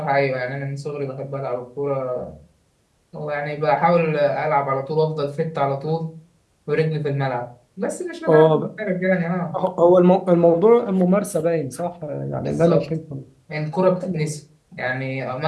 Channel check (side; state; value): both; identical; correlation 1.00